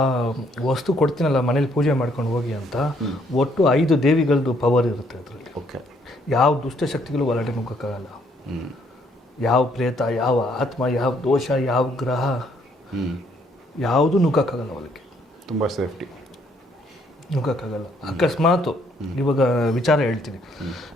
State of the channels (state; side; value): normal; both; correlation 0.68